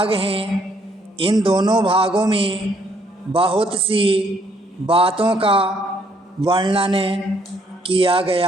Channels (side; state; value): both; normal; correlation 0.67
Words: हैं। इन दोनों भागों में बहुत सी बातों का वर्णन किया